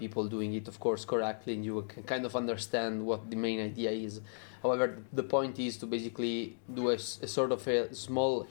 doing it, of course, correctly, and you can kind of understand what the main idea is. However, the point is to basically do a sort of a small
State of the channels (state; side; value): silent; right; digital silence